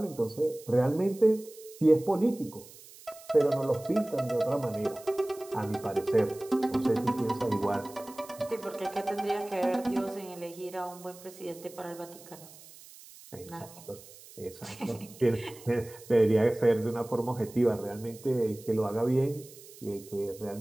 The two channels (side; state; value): right; noise; hiss, 20 dB below the sound